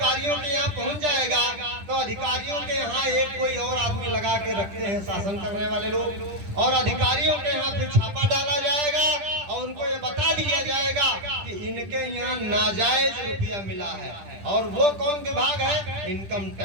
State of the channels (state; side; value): late; left; 10 ms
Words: के यहाँ पहुंच जाएगा तो अधिकारियों के यहाँ एक कोई और आदमी लगा के रखते हैं शासन करने वाले लोग, और अधिकारियों के यहाँ फिर छापा डाला जाएगा और उनको ये बता दिया जाएगा कि इनके यहाँ नाजायज रुपया मिला है। और वो कौन विभाग है? Income